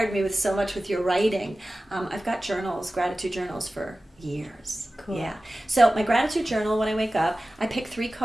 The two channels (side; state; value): both; normal; correlation 0.96